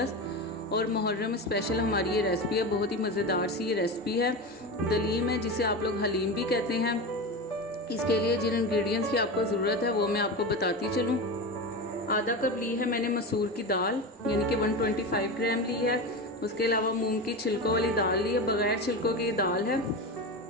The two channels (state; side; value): normal; both; correlation 0.23